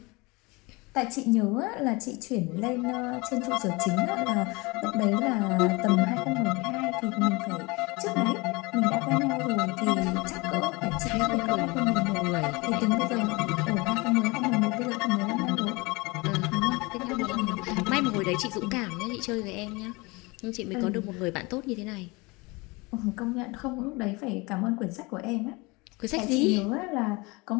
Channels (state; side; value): quieter; right; 25.3 dB